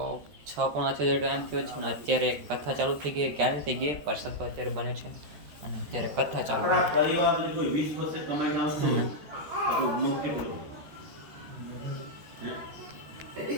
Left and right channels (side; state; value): left; late; 13 ms